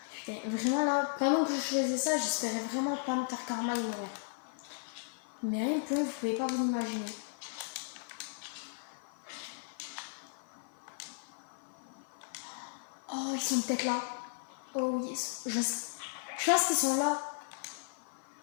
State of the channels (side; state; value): right; silent; 54 dB below the other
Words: Putain, vraiment là, pendant que je faisais ça, j'espérais vraiment pas me faire karma et mourir. Mais rien que vous pouvez pas vous imaginer. Oh, ils sont peut-être là. Oh oui, je pense qu'ils sont là.